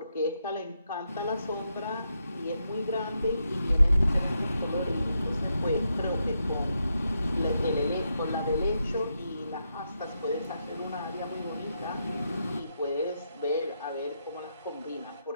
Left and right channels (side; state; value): both; inverted; correlation -0.82